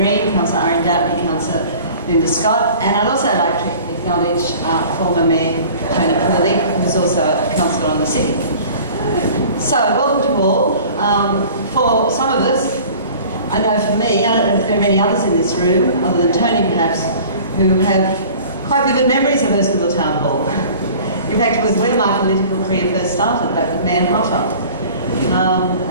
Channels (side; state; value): both; inverted; correlation -0.45